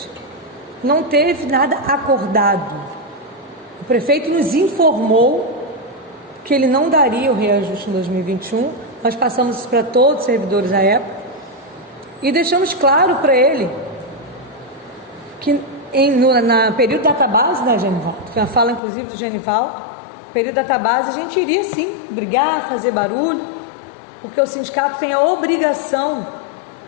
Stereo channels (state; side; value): drops out; right; at 18.8 s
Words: Não teve nada acordado. O prefeito nos informou que ele não daria o reajuste em 2021, nós passamos isso para todos os servidores da época e deixamos claro para ele que no período da database, Genivaldo, foi uma fala inclusive do Genivaldo, período da database a gente iria sim brigar, fazer barulho, porque o sindicato tem a obrigação